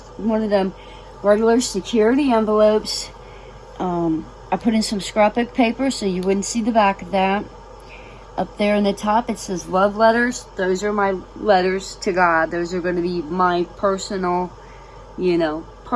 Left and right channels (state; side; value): identical; both; correlation 1.00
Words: one of them regular security envelopes. I put in some scrapbook paper so you wouldn't see the back of that. Up there in the top it says love letters. Those are my letters to God. Those are going to be my personal,